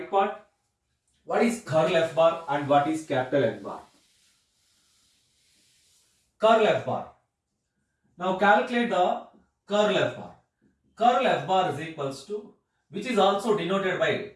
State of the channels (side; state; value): both; identical; correlation 1.00